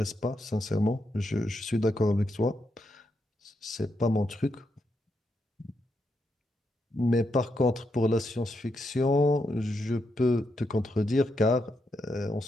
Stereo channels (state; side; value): normal; both; correlation 0.82